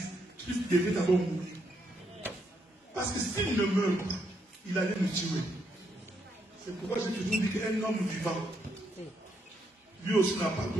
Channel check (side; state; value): both; normal; correlation 0.77